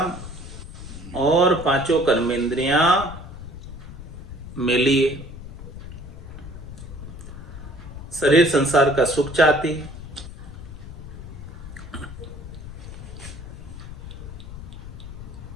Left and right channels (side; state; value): left; noise; rumble, 12 dB below the sound